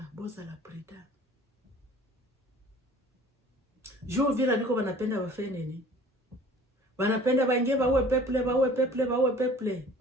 boza la preda. Juu Uvira niko wanapenda wafanye nini? Wanapenda baingie baue peple.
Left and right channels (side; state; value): both; normal; correlation 0.48